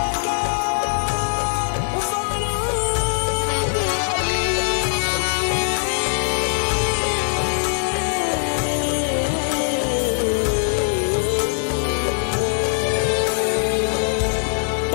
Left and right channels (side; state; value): right; silent; digital silence